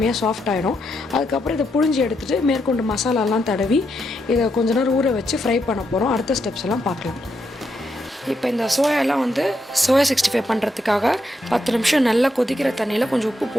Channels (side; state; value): both; normal; correlation 0.81